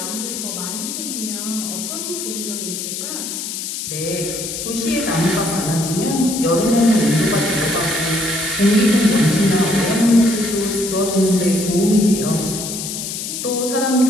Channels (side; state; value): left; noise; hiss, 5 dB below the sound